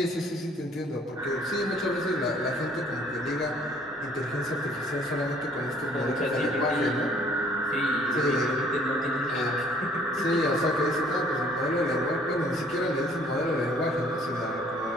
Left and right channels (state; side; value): normal; both; correlation 0.58